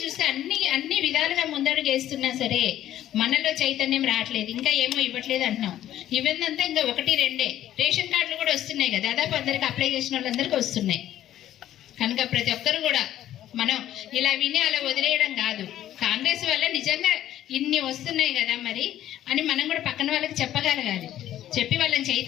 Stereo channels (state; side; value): quieter; right; 12.4 dB